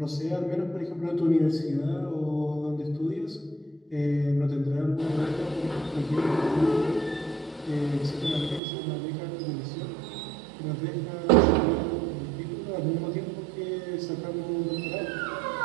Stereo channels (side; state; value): left; drops out; at 8.6 s